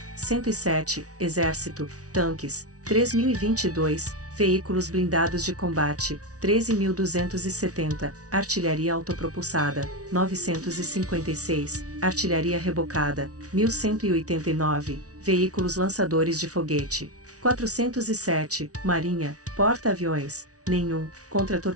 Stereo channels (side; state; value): left; late; 0.67 ms